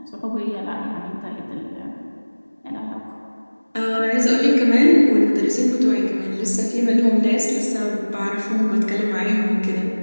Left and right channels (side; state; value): both; inverted; correlation -1.00